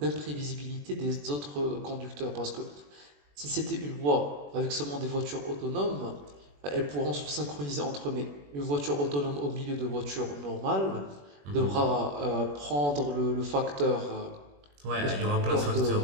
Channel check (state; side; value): late; left; 21 ms